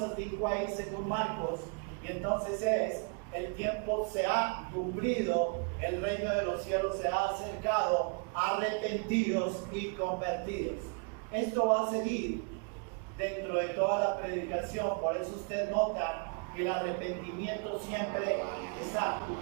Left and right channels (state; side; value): quieter; left; 37.5 dB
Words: dijo ahí según Marcos, y entonces es: el tiempo se ha cumplido, el reino de los cielos se ha acercado, arrepentidos y convertidos. Esto va a seguir dentro de toda la predicación, por eso usted nota que el arrepentimiento siempre está.